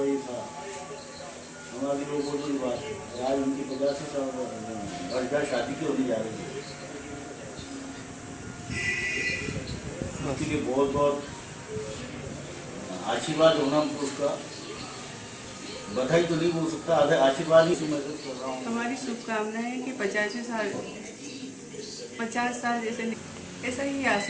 ये था, हमारी वो बहुत बड़ी बात है। आज उनकी 50 साल वर्षगांठ शादी की होने जा रही है, उसके लिए बहुत बहुत आशीर्वाद होना उसका। बधाई तो नहीं बोल सकता, आशीर्वाद ही से महसूस कर रहा हूँ। हमारी शुभकामना है कि 50 साल जैसे ऐसा ही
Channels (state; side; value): identical; both; correlation 1.00